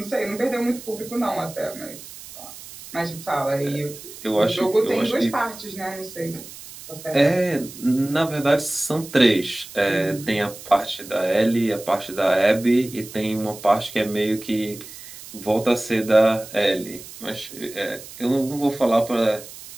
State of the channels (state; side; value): noise; right; hiss, 15 dB below the sound